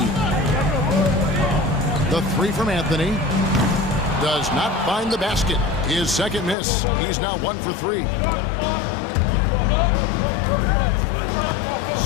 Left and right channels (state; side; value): drops out; right; at 6.6 s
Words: The three from Anthony does not find the basket. His second miss. He's now 1 for 3.